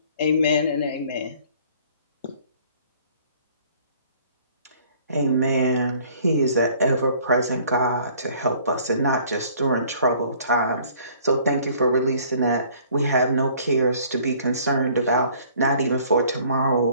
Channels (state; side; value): inverted; both; correlation -0.56